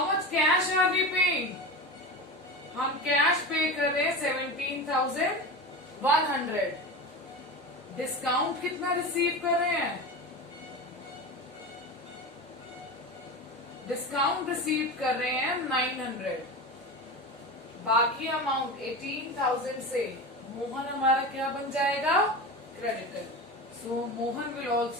much cash are we paying? हम कैश पे कर रहे हैं 17,100। डिस्काउंट कितना रिसीव कर रहे हैं? डिस्काउंट रिसीव कर रहे हैं 900। बाकी अमाउंट 18,000 से मोहन हमारा क्या बन जाएगा? Creditor. So Mohan will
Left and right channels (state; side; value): normal; both; correlation 0.26